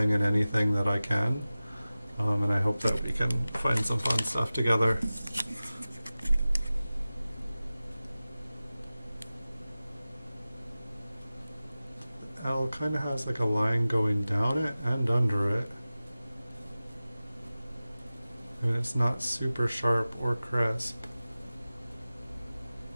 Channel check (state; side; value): inverted; both; correlation -0.97